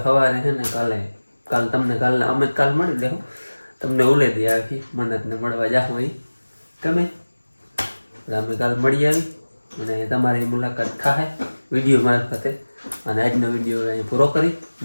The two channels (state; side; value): inverted; both; correlation -1.00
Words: સવારે છે ને કાલ તમને કાલના અમે કાલ મળી લેવું તમને ઉલે દે આખી મન્નતને મળવા જાઉં એ તમે અમે કાલ મળી આવી અને તમારી મુલાકાત થાય વિડીયો મારફતે. અને આજનો વિડીયો અહીં પૂરો કરી